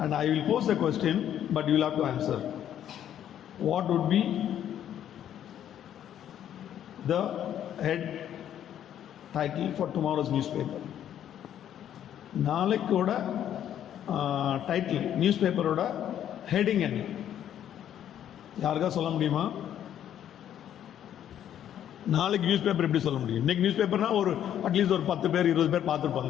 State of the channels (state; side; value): quieter; right; 10.4 dB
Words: And I will pose the question, but you will have to answer. What would be the head title for tomorrow's newspaper? நாளைக்கோட title நியூஸ்பேப்பரோட heading என்ன? யாருக்கா சொல்ல முடியுமா? நாளைக்கு news paper எப்படி சொல்ல முடியும்? இன்னைக்கு நியூஸ் பேப்பர்னா ஒரு அட்லீஸ்ட் ஒரு 10 பேர் 20 பேர்